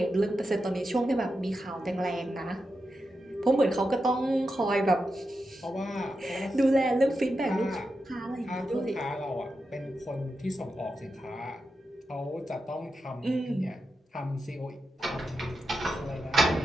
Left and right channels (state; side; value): normal; both; correlation 0.89